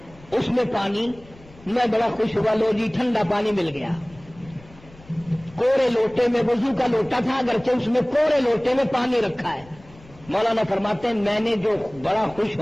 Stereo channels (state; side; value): noise; left; rumble, 23 dB below the sound